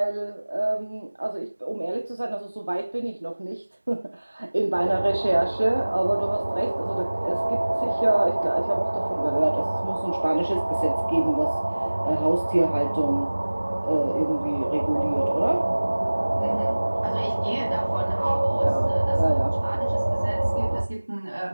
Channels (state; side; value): inverted; both; correlation -1.00